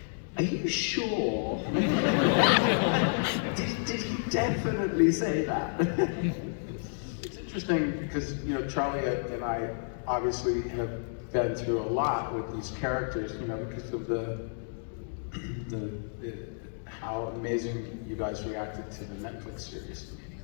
"Are you sure?" did he definitely say that? It's interesting because, Charlie and I obviously have been through a lot with these characters, because of the how amazing you guys reacted to the Netflix series.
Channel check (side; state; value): right; silent; digital silence